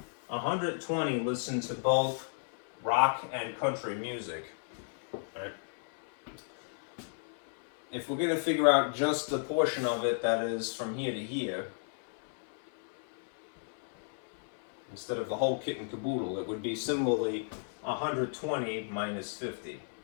120 listen to both rock and country music, right? If we're going to figure out just the portion of it that is from here to here, instead of the whole kit and caboodle, it would be similarly 120 minus 50,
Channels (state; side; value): silent; right; 55 dB below the other